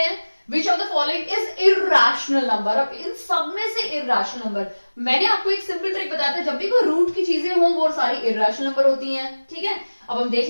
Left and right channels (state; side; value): inverted; both; correlation -1.00